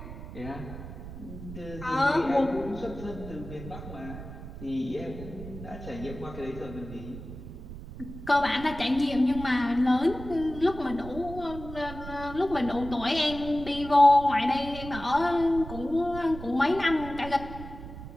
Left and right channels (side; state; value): right; noise; rumble, 12 dB below the sound